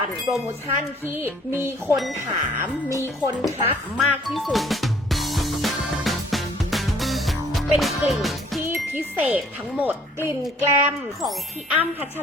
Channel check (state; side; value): normal; both; correlation 0.58